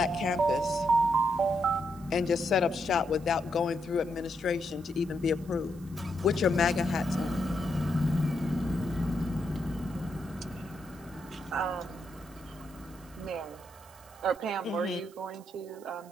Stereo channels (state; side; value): noise; right; hiss, 26 dB below the sound